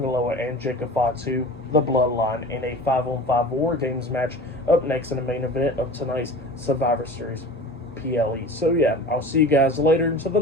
Loa, and Jacob Fatu, the Bloodline, in a 5-on-5 War Games match up next in the main event of tonight's Survivor Series PLE. So yeah, I'll see you guys later until the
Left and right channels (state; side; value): normal; both; correlation 0.37